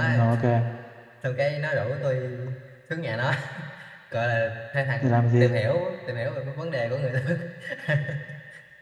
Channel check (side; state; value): both; identical; correlation 1.00